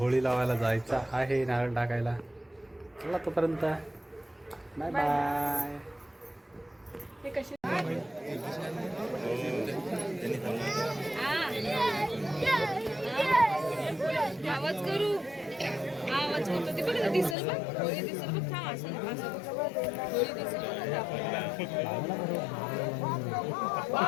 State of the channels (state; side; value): drops out; right; at 17.4 s